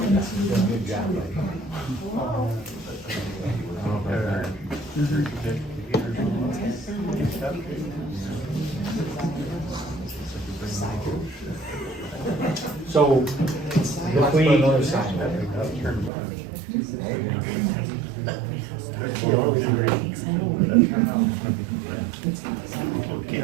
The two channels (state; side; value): drops out; left; at 16.1 s